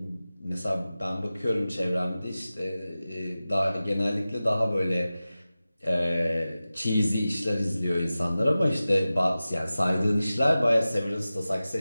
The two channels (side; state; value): both; inverted; correlation -0.96